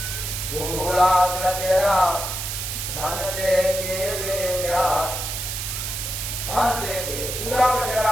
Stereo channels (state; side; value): noise; right; hiss, 4 dB below the sound